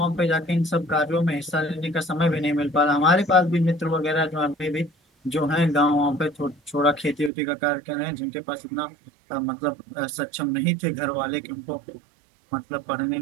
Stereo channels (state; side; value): drops out; left; at 7.3 s